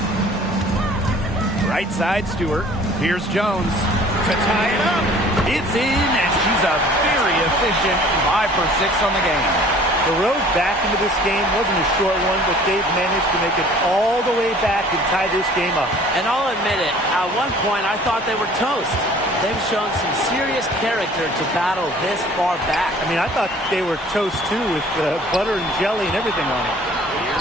Right side, Stewart. Here's Jones to tie it up. It's in, and she's a very efficient 5 for 6 on the game. The road back into this game wasn't a short one, but they've managed to make it all the way back and tie this game up. And I'll admit it, at one point I thought they were toast. They've shown some serious character to battle this far back. I mean, I thought they were toast too with butter and jelly and everything on it.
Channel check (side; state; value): both; normal; correlation 0.51